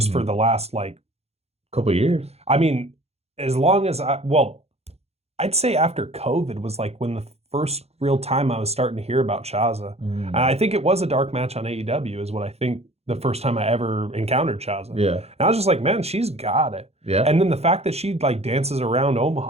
for the last couple years. I mean, as long as I'd say after COVID was like when the first real time I was starting to hear about Shaza. And I think it was a dark match on AEW is what I think the first time I ever encountered Shaza. Yeah. And I was just like, man, she's got it. Yeah. And then the fact that she like dances around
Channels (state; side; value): late; left; 0.30 ms